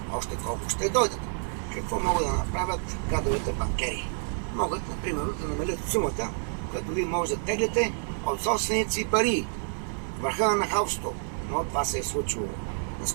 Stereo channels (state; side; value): silent; left; 59 dB below the other